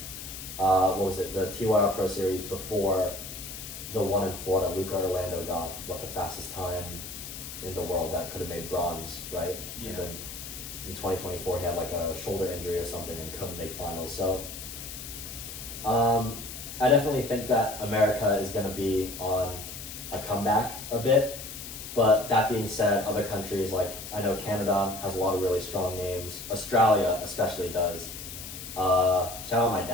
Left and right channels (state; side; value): noise; left; hiss, 10 dB below the sound